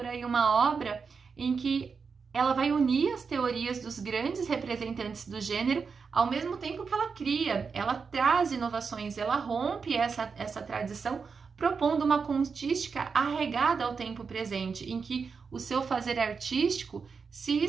aí uma obra em que ela vai unir as teorias dos grandes representantes do gênero, ao mesmo tempo que ela cria, ela traz inovações, ela rompe essa tradição, propondo uma contística arraigada ao tempo presente, em que o seu fazer artístico se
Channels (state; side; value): quieter; left; 5.4 dB